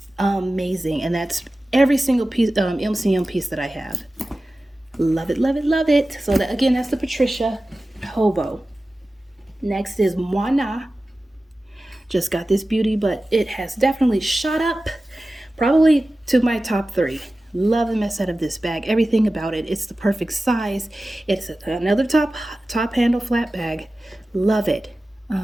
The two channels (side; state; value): both; normal; correlation 0.95